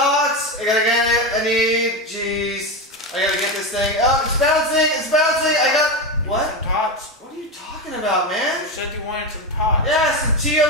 I gotta get it. I need, jeez. I gotta get this thing. Oh, it's bouncing. It's bouncing. I got, what? Some TOTs. What are you talking about, man? You said you wanted some TOTs. Yeah, some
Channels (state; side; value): normal; both; correlation 0.16